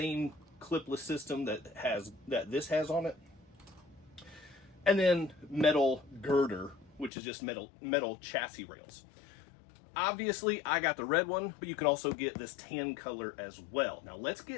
clipless system that this has on it. And then metal girder, which is just metal chassis rails. Obviously, I got the red one, but you can also get this tan color as well. Now, let's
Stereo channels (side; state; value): right; drops out; at 7.1 s